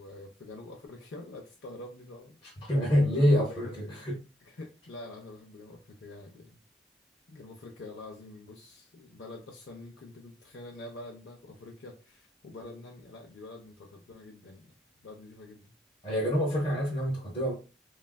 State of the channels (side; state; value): both; normal; correlation 0.74